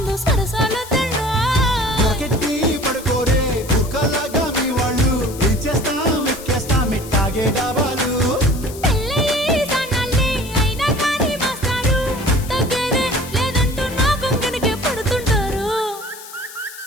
సరసాలొద్దండా రాకెట్టి పడుకోరే కుక్కలాగా మీ వాళ్ళు ఏం చేస్తాం ఎక్కేస్తాం ఇట్టాగే డాబాలు పెళ్ళయి సన్నాళ్ళే అయినా కానీ మాస్తారు తగ్గేదే లేదంటూ నా కొంగనికే పడుతుంటారు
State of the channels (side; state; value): left; noise; hiss, 15 dB below the sound